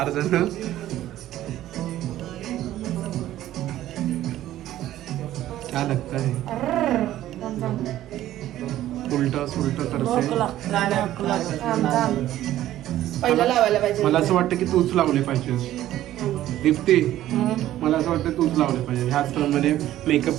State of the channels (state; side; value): quieter; left; 13.5 dB